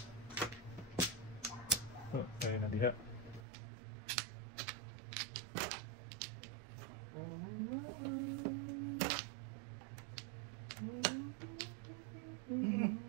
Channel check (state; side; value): drops out; left; at 3.5 s